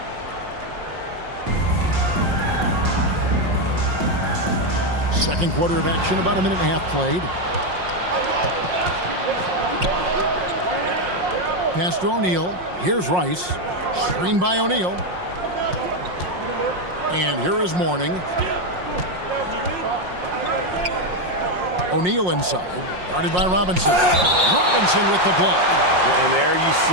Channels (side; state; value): left; late; 5.6 ms